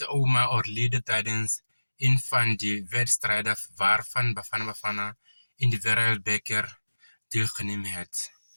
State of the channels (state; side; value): inverted; both; correlation -1.00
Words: oma overleden tijdens een van de wedstrijden waarvan Bafana in de Wereldbeker deelgenomen heeft.